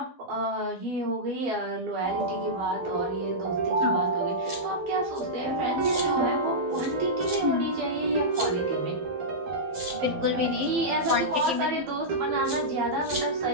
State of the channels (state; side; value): late; left; 12 ms